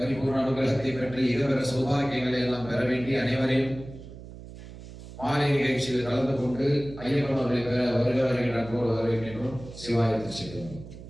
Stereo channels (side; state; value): right; noise; hum, 15 dB below the sound